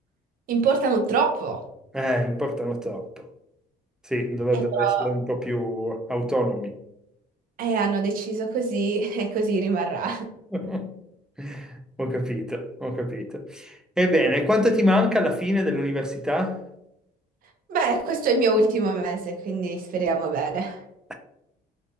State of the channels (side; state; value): both; normal; correlation 0.57